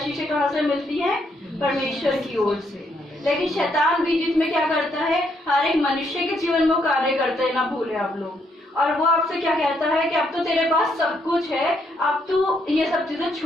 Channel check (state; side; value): normal; both; correlation 0.74